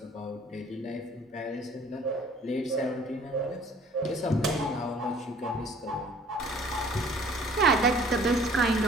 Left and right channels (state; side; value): normal; both; correlation 0.53